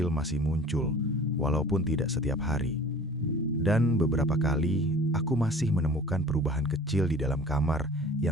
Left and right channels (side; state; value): both; normal; correlation 0.46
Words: masih muncul, walaupun tidak setiap hari. Dan beberapa kali, aku masih menemukan perubahan kecil di dalam kamar